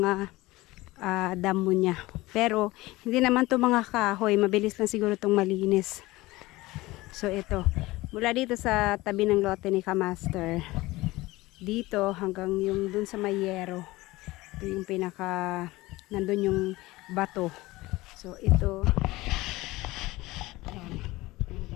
damo niya. Pero hindi naman to mga kahoy, mabilis lang siguro itong malinis. So ito, mula dito sa tabi ng lote ni Kamaster, dito hanggang yung dun sa Mayero, ito yung pinaka nandun yung bato. So ito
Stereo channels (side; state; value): right; quieter; 19.7 dB